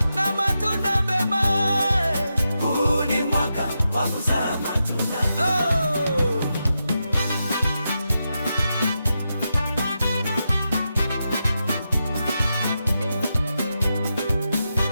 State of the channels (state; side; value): inverted; both; correlation -0.88